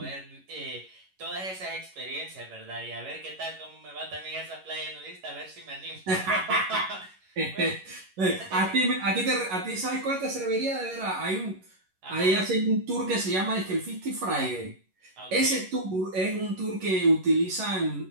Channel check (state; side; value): late; left; 11 ms